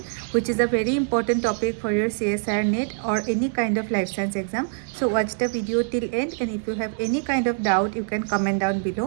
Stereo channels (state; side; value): silent; left; digital silence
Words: which is a very important topic for your CSIR NET or any kind of life science exam. So watch the video till end, and if you have any kind of doubt you can comment down